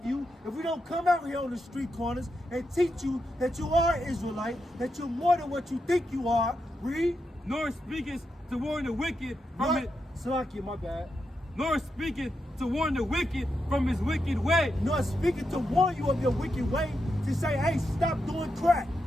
you, if we don't come out here on the street corners and teach you that you are Israelite, that you're more than what you think you are, read. Nor speakest to warn the wicked from it. Salakia, my bad. Nor speaketh to warn the wicked from his wicked way. Nor speaking to warn you of your wicked way, to say, hey, stop doing crack.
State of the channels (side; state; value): both; normal; correlation 0.85